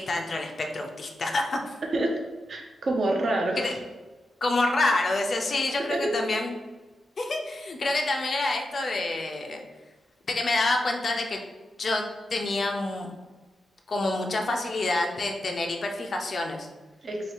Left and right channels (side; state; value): both; normal; correlation 0.88